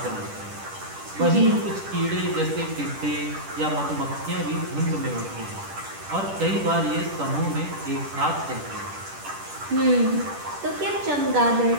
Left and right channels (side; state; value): left; late; 10 ms